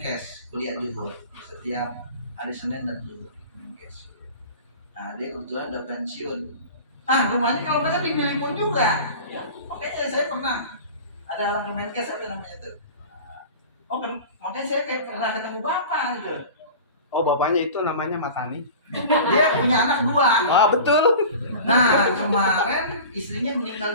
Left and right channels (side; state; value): both; inverted; correlation -0.37